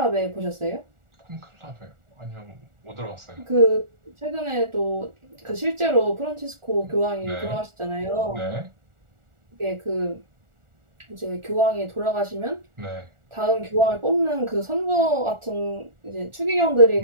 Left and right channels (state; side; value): late; left; 1.4 ms